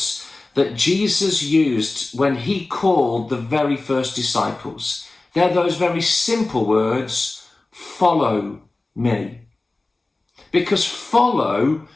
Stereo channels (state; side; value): quieter; right; 3.1 dB